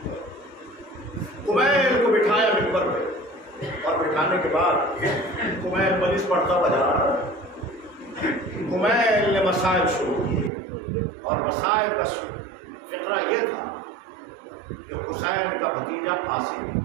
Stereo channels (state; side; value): drops out; left; at 10.5 s